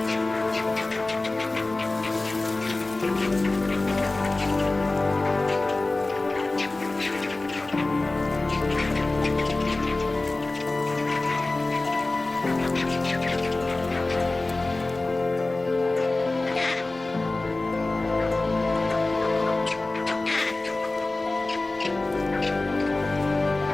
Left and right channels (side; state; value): right; quieter; 3.1 dB